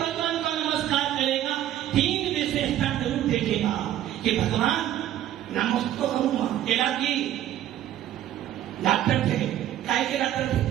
को नमस्कार करेगा 3 विशेषता जरूर देखेगा कि भगवान नमस्कार करूंगा। तेरा की डॉक्टर थे, काय के डॉक्टर थे,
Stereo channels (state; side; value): quieter; left; 12.2 dB